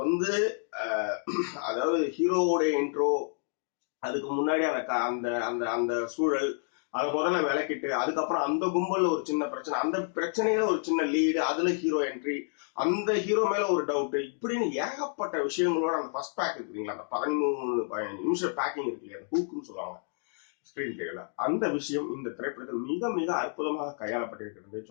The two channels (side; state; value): right; silent; 56 dB below the other